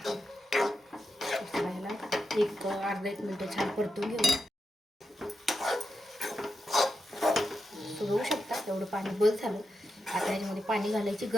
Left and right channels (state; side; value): normal; both; correlation 0.87